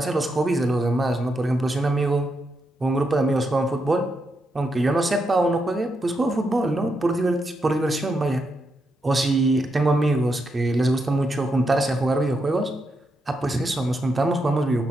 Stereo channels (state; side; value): normal; both; correlation 0.82